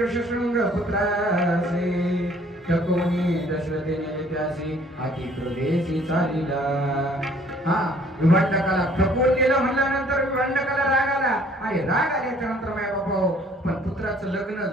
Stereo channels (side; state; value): both; normal; correlation 0.58